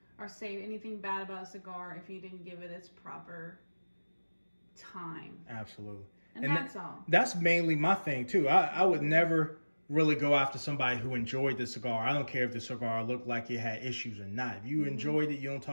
or say anything bad about a cigar if you didn't give it its proper time. Absolutely. And that's all. That's mainly my thing too. I would never really go after somebody who enjoyed the cigar. I don't care if the cigar looked like it had issues or not. If you enjoyed it, you don't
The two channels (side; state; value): both; inverted; correlation -1.00